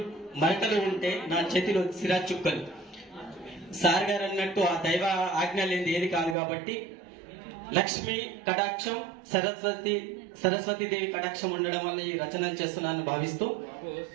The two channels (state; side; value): drops out; left; at 6.4 s